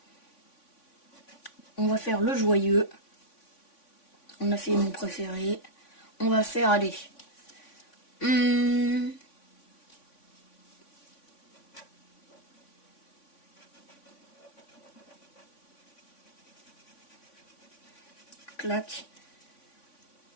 On va faire le joyeux. On a fait mon préféré. On va faire, allez. Clac.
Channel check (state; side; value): late; right; 3.5 ms